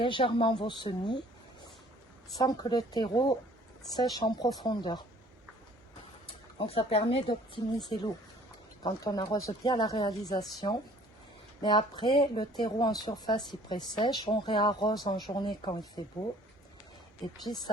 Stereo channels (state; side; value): normal; both; correlation 0.54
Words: vos semis sans que le terreau sèche en profondeur. Donc ça permet d'optimiser l'eau quand on arrose bien la réalisation. Mais après, le terreau en surface il pré-sèche, on réarrose en journée quand il fait beau. Et puis